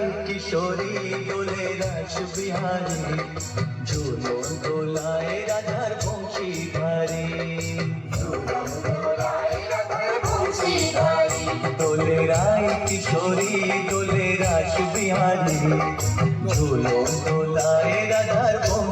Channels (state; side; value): identical; both; correlation 1.00